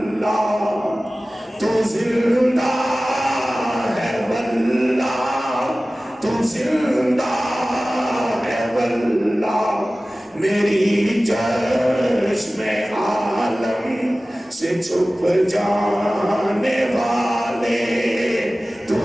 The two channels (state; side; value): normal; both; correlation 0.97